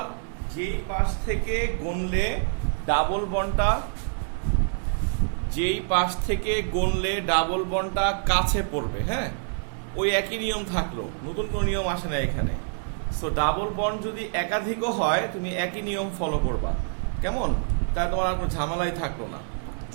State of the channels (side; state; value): left; silent; 61 dB below the other